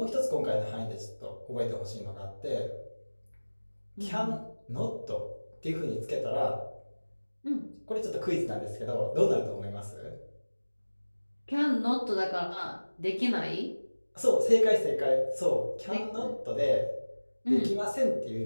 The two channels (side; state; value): both; inverted; correlation -1.00